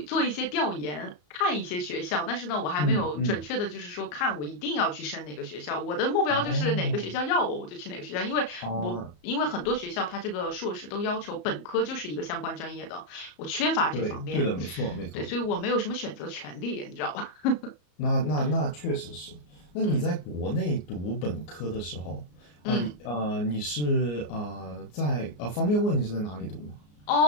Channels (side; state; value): right; late; 34 ms